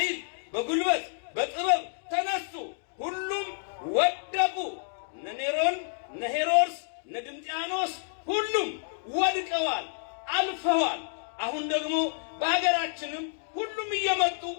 በጉልበት በጥበብ ተነሱ። ሁሉም ወደቁ። እነ ኔሮን፣ እነ ሄሮድስ፣ እነ ድንጥያኖስ ሁሉም ወድቀዋል፣ አልፈዋል። አሁን ደግሞ በሀገራችንም ሁሉም እየመጡ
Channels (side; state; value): right; silent; digital silence